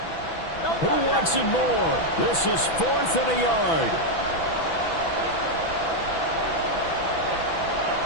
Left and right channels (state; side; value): late; right; 6.1 ms